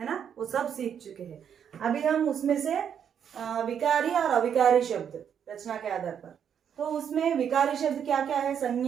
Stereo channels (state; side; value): quieter; left; 8.3 dB